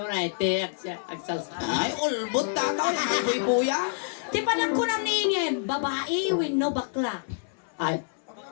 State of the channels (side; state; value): right; silent; 60 dB below the other